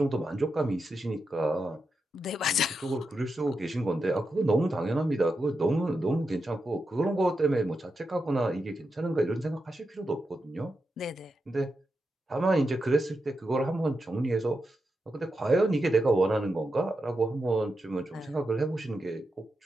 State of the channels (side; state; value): both; normal; correlation 0.87